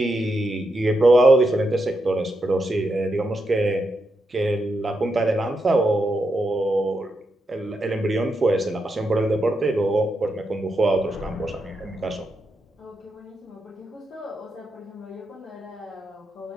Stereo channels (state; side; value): normal; both; correlation 0.84